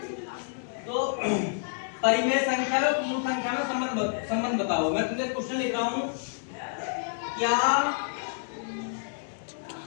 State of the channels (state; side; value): silent; right; digital silence